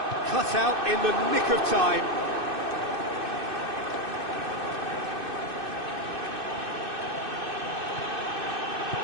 Cut out in the nick of time.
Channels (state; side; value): late; left; 2.6 ms